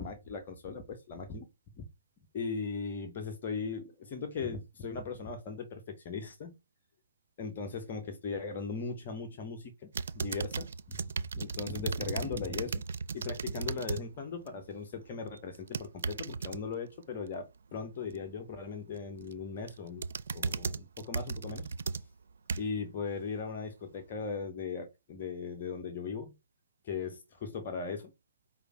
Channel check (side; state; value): both; inverted; correlation -0.48